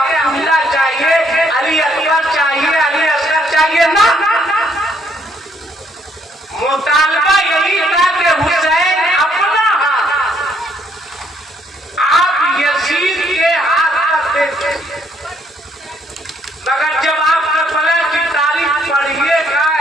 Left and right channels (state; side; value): normal; both; correlation 0.69